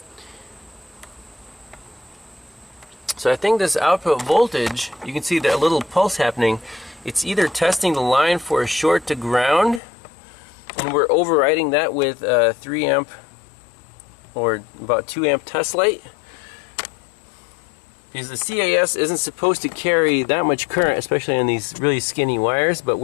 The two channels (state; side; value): drops out; right; at 9.8 s